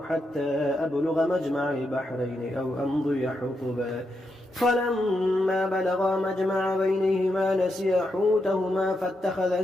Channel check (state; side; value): normal; both; correlation 0.83